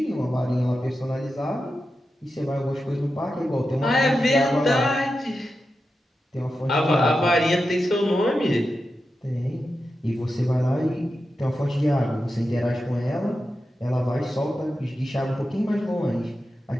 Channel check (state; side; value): normal; both; correlation 0.90